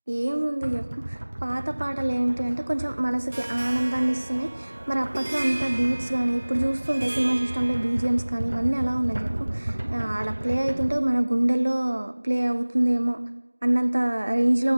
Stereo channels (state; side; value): inverted; both; correlation -1.00